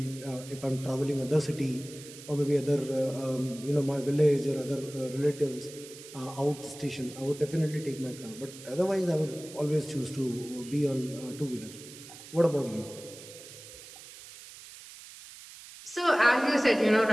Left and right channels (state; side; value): noise; right; hiss, 16 dB below the sound